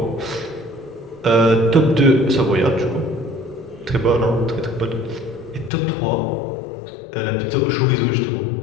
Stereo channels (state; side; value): drops out; right; at 5.7 s